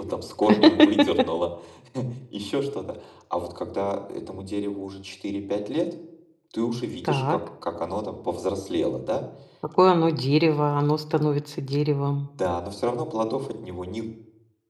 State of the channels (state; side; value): identical; both; correlation 1.00